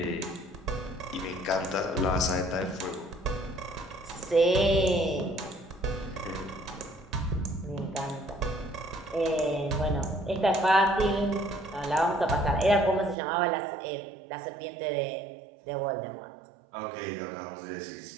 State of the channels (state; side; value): drops out; left; at 13.2 s